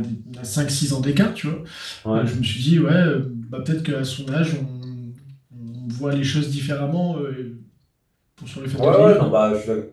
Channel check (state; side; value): identical; both; correlation 1.00